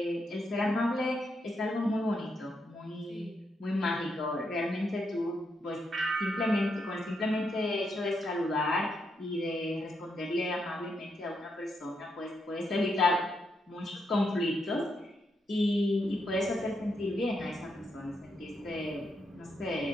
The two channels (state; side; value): normal; both; correlation 0.80